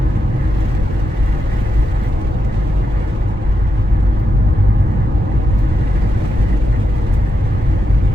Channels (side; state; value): both; normal; correlation 0.85